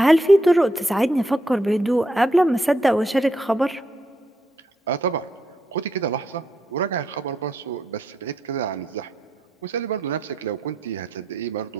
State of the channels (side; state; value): both; normal; correlation 0.79